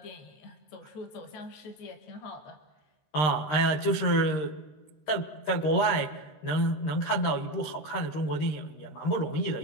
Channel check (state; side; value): late; right; 13 ms